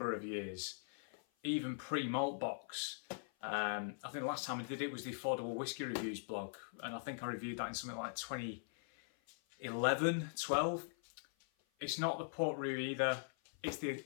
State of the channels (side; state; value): right; silent; 50 dB below the other